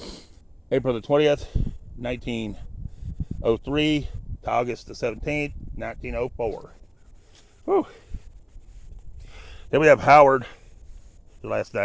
April the 20th, 1903 to August the 17th, 1904. Whew. Then we have Howard, the last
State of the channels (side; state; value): both; identical; correlation 1.00